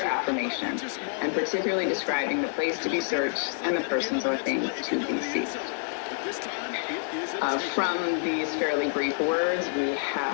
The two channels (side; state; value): right; silent; digital silence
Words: and particularly describing the place to be searched and the persons or things to be seized. From these fairly brief words, we